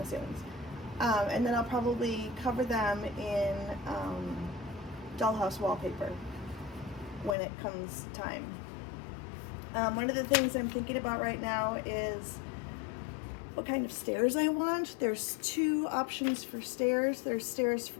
ceilings. And then I'll probably cover them in dollhouse wallpaper when it comes time. One of the things I'm thinking about right now is what kind of stairs I want. There's two options for stairs. There's stairs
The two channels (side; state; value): right; drops out; at 7.4 s